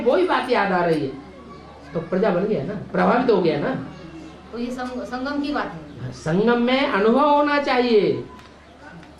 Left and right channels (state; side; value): identical; both; correlation 1.00